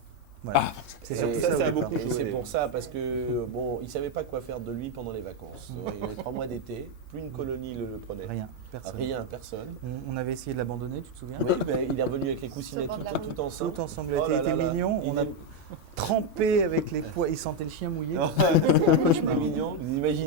Voilà. C'est Et surtout ça, ça, ça a au départ. beaucoup Et joué. c'est pour ça, parce que bon, il savait pas quoi faire de lui pendant les vacances. Il avait 3 mois d'été, plus une colonie le prenait. Rien, personne. Rien, personne. On avait essayé de l'abandonner, tu te souviens? Oui, ben, il est revenu avec les coussinets Sur le bord de la tout ensemble. Tout ensanglanté, Oh il là était là là. mignon. Il On a est- trempé avec les poids. Il sentait le chien mouillé. C'était un cauchemar mignon. Vous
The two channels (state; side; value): late; left; 2.5 ms